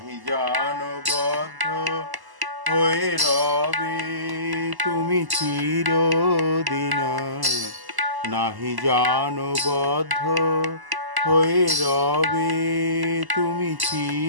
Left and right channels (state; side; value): late; left; 1.0 ms